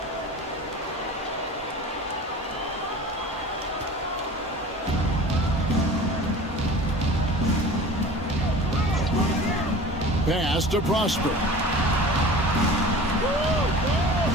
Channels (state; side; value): normal; both; correlation 0.39